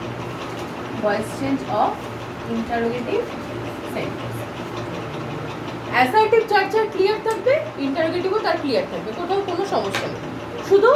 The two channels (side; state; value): both; identical; correlation 1.00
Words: Voice change of interrogative sentence. Assertive যার যার ক্লিয়ার থাকবে, ইন্টারোগেটিভও তার ক্লিয়ার থাকবে, কোথাও কোনো সমস্যা নেই। শুধু